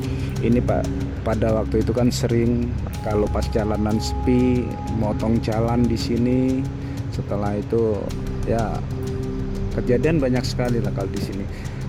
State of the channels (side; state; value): both; identical; correlation 1.00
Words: Ini Pak, pada waktu itu kan sering kalau pas jalanan sepi motong jalan di sini. Setelah itu ya kejadian banyak sekali lah kalau di sini.